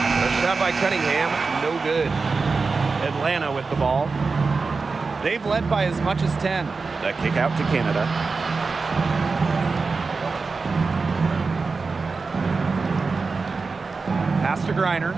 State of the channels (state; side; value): quieter; left; 4.3 dB